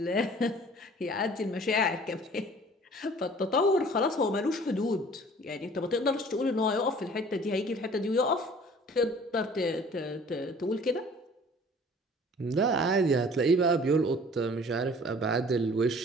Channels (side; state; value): both; normal; correlation 0.50